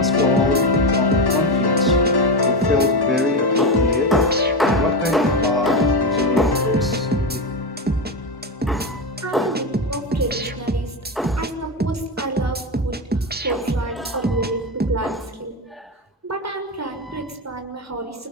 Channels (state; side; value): normal; both; correlation 0.14